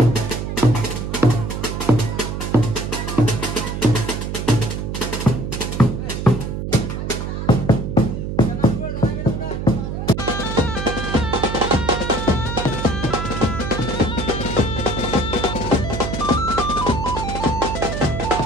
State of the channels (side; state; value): right; noise; hum, 4 dB below the sound